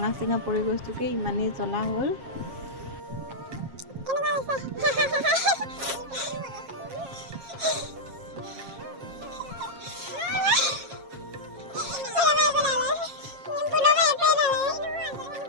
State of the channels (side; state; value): left; late; 7.4 ms